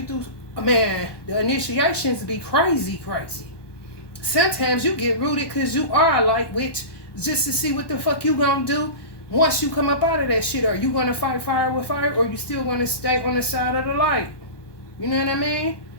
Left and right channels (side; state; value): right; late; 1.2 ms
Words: through, man, the initiations be crazy. Sometimes you get rooted because you are a light witch just to see what the fuck you gonna do once you come up out of that shit. Are you gonna fight fire with fire or you still gonna stay on the side of the light? You know what I mean?